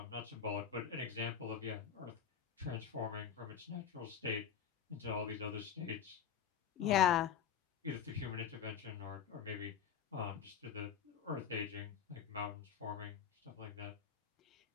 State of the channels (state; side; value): quieter; right; 7.9 dB